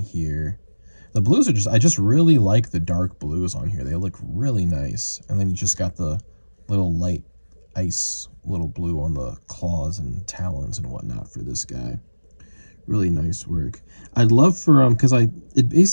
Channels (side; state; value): both; inverted; correlation -1.00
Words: here. The blues are just, I just really like the dark blues on here. They look really nice. And then you just got the little light ice little blue on the claws and talons and whatnot for this guy. Really nice work. I'd love for because it